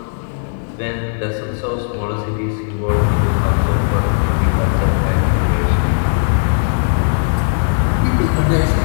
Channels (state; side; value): silent; right; 60 dB below the other